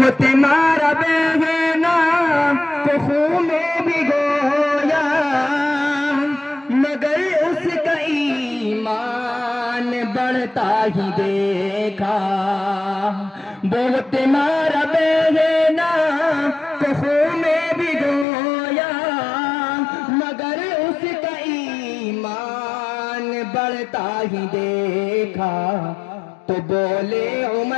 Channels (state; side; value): drops out; right; at 18.2 s